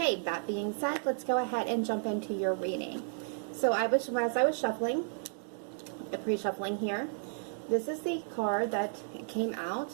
that being said, let's go ahead and jump into your reading. So as I was shuffling, pre-shuffling here, this is the card that came out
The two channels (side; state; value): left; silent; digital silence